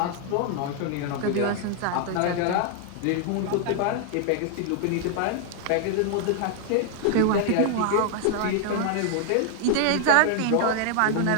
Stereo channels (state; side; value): different; both; correlation 0.00